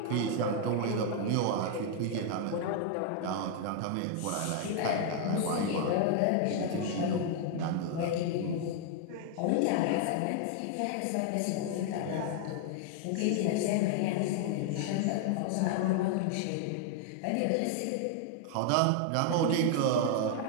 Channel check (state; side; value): different; both; correlation 0.00